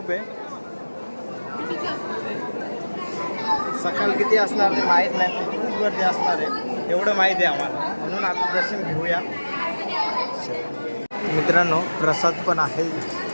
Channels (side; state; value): both; inverted; correlation -1.00